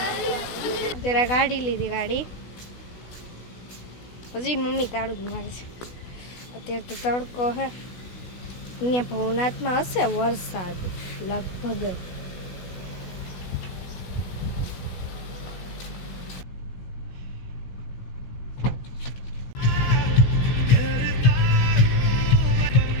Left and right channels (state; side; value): late; right; 16 ms